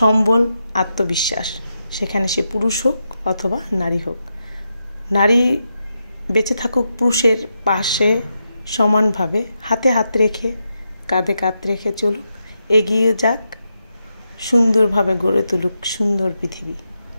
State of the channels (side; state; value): both; inverted; correlation -0.86